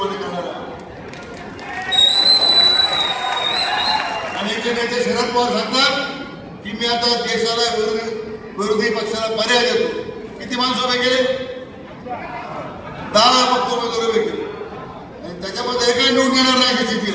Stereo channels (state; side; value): identical; both; correlation 1.00